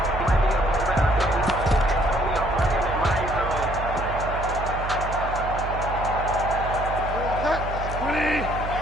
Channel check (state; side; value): noise; right; hum, 6 dB below the sound